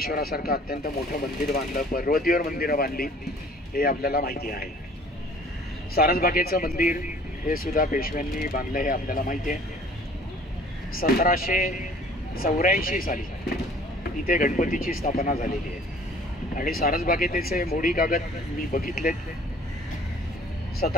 अत्यंत मोठं मंदिर बांधलं, पर्वतीवर मंदिरं बांधली, हे आपल्याला माहिती आहे. सारसबागेचं मंदिर हे सुद्धा पेशव्यांनी बांधलं हे आपल्याला माहिती आहे. 1784 साली इथे गणपतीची स्थापना झालेली आहे आणि सारसबागेचे मोडी कागद मी बघितलेत.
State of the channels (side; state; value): both; normal; correlation 0.52